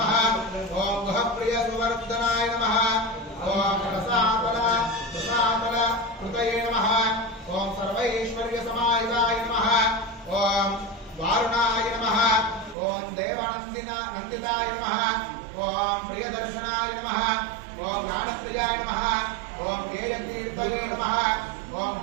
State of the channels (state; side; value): drops out; left; at 12.8 s